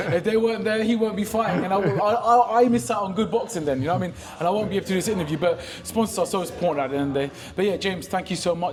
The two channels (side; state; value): both; identical; correlation 1.00